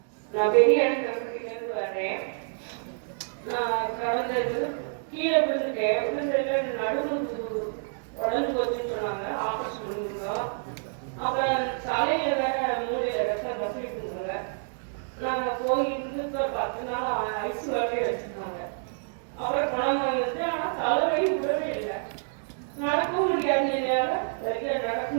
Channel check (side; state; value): left; silent; digital silence